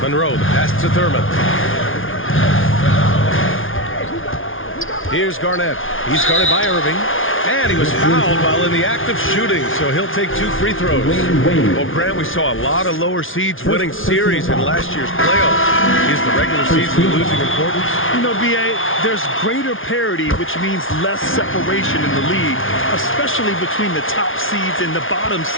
Monroe, the pass to Thurman. Here's Garnett. He's guarded by Irving. And he was fouled while in the act of shooting, so he'll take 2 free throws. Well, Grant, we saw a lot of lower seeds winning series in last year's playoffs. Is the regular season losing importance? You know, B.A., there's greater parity, which means less separation in the league, especially between the top seeds and the bottom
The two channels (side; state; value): right; late; 0.58 ms